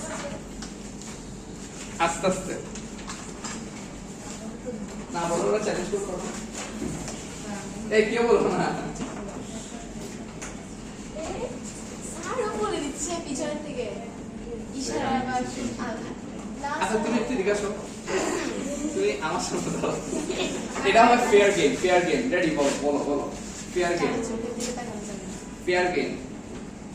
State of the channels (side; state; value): both; identical; correlation 1.00